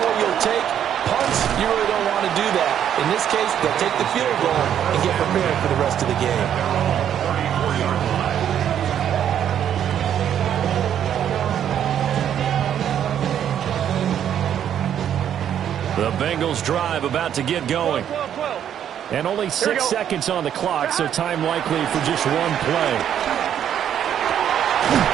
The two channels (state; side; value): quieter; left; 9.7 dB